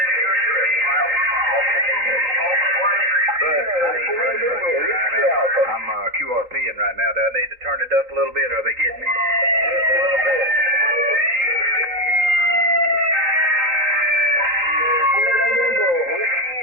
I'm QRPing right now. Do I need to turn it up a little bit? Are they getting me? Just a little bit. Whiskey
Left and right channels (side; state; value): left; late; 3.9 ms